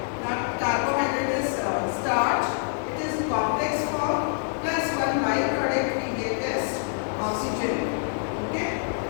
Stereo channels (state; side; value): silent; right; 61 dB below the other